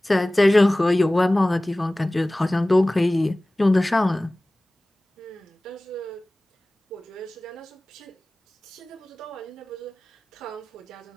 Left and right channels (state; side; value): normal; both; correlation 0.98